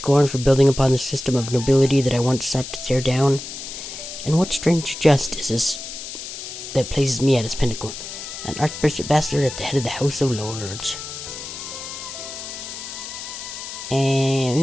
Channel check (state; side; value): noise; left; hiss, 9 dB below the sound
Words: for building upon the system of nobility that I once sought to tear down? And what strange jest is this that places me at its pinnacle, an archbishop bastard at the head of the House of Lords?